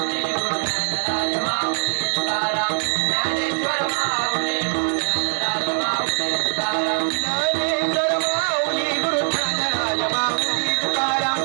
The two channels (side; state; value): left; silent; digital silence